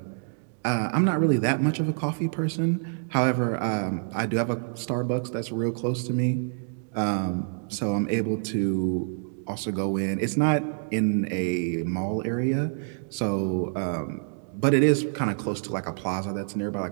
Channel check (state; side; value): silent; left; digital silence